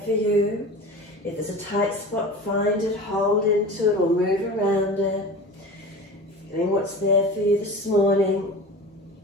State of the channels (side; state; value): both; normal; correlation 0.35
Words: for you? If there's a tight spot, find it, hold into it or move around it. Feeling what's there for you this morning.